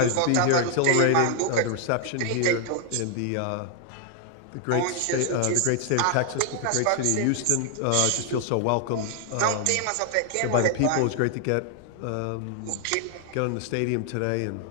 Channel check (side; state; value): both; different; correlation 0.00